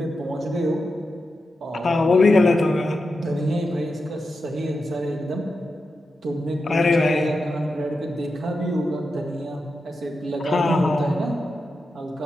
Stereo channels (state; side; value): normal; both; correlation 0.89